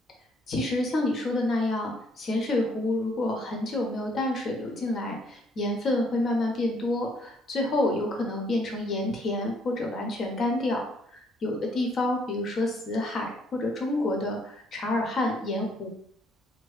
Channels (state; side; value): normal; both; correlation 0.66